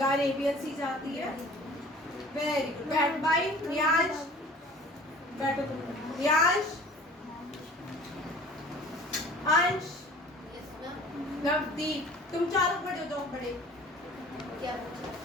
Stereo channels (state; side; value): normal; both; correlation 0.47